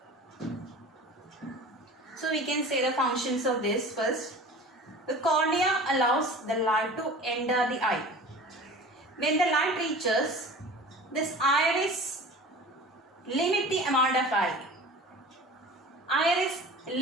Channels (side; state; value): both; normal; correlation 0.40